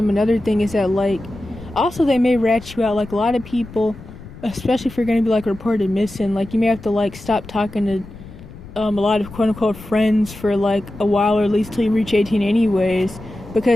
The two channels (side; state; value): left; noise; rumble, 16 dB below the sound